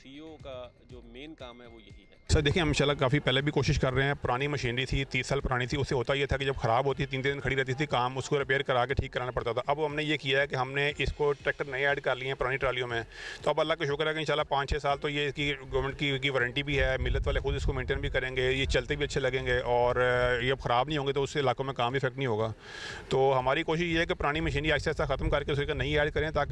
का जो मेन काम है वो यही है। सर देखिए, हम इंशाल्लाह काफ़ी पहले भी कोशिश कर रहे हैं। पुरानी मशीनरी थी, 30 साल पुरानी थी, उससे होता ये था कि जब ख़राब होती 3 दिन खड़ी रहती थी, काम उसको रिपेयर करा के ठीक कराना पड़ता था। अब हमने ये किया है कि हमने इसको ट्रैक्टर नए ऐड कर लिए हैं पुरानी ट्रालियों में। तो अब अल्लाह का शुक्र है कि इंशाल्लाह 5-6 साल तो ये इसकी गवर्नमेंट की वारंटी भी है, मिलत वाले खुद इसको मेंटेन भी करेंगे, ये चलते भी अच्छे लगेंगे और ये अब ख़राब नहीं होंगे तो उससे इलाकों में काम इफेक्ट नहीं होगा। तो हमारी कोशिश ये है कि पुरानी मशीनरी आहिस्ता आहिस्ता ख़त्म करके उसको नई ऐड करें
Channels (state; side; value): identical; both; correlation 1.00